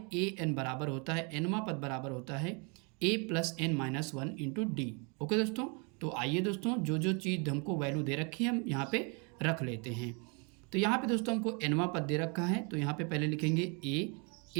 a n बराबर होता है, nवां पद बराबर होता है a + n-1 into D. Okay दोस्तों, तो आइए दोस्तों जो जो चीज़ हमको वैल्यू दे रखी है हम यहाँ पे रख लेते हैं। तो यहाँ पे दोस्तों हमको nवां पद दे रखा है, तो यहाँ पे पहले लिखेंगे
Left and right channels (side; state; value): left; quieter; 34.0 dB